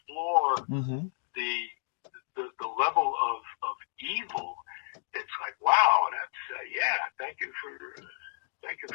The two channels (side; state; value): right; silent; digital silence